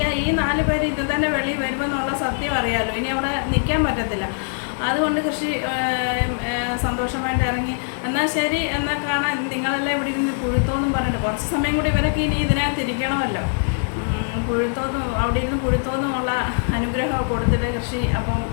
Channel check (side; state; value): right; silent; digital silence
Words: ഈ 4 പേര് ഇത് തന്നെ വെളിയിൽ വരുമെന്നുള്ള സത്യം അറിയാമല്ലോ. ഇനി അവിടെ നിൽക്കാൻ പറ്റത്തില്ല. അതുകൊണ്ട് കൃഷി സന്തോഷമായിട്ട് ഇറങ്ങി. എന്നാൽ ശരി, എന്നാൽ കാണാൻ നിങ്ങളെല്ലാം ഇവിടെ ഇരുന്ന് പുഴുത്തോന്നും പറഞ്ഞിട്ട് കുറച്ച് സമയം കൂടി ഇവരൊക്കെ ഇനി ഇതിനകത്ത് ഇരിക്കണമല്ലോ. അവിടെ ഇരുന്ന് പുഴുത്തോന്നുമുള്ള അനുഗ്രഹം കൊടുത്തിട്ട് കൃഷി അപ്പം